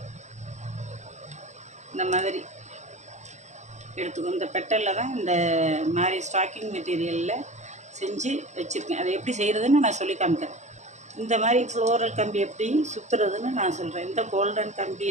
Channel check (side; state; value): left; late; 0.34 ms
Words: இந்த மாதிரி எடுத்துக்கணும். இந்த பெட்டலில் தான் இந்த மாதிரி ஸ்டாக்கிங் மெட்டீரியலில் செஞ்சு வச்சுருக்கேன். அதை எப்படி செய்கிறதுன்னு நான் சொல்லி காமிக்கிறேன். இந்த மாதிரி ஃப்ளோரல் கம்பி எப்படி சுற்றுறதுன்னு நான் சொல்கிறேன். இந்த கோல்டன்